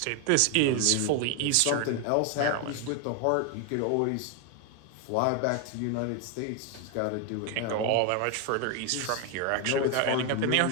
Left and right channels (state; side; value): different; both; correlation 0.01